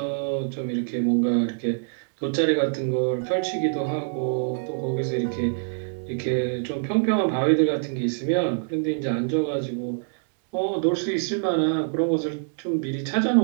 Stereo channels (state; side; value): silent; left; 62 dB below the other